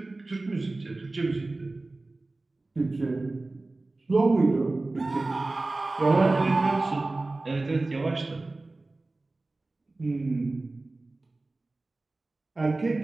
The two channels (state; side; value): quieter; left; 3.1 dB